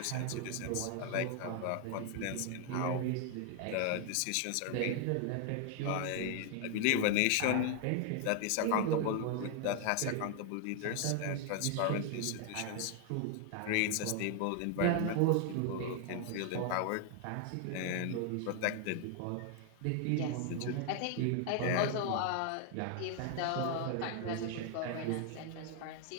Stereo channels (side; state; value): both; different; correlation 0.00